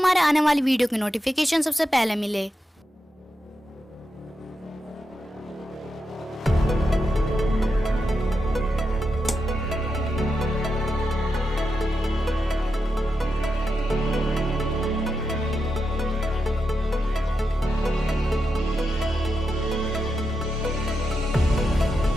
आने वाली वीडियो की नोटिफिकेशन सबसे पहले मिले।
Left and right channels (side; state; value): both; normal; correlation 0.87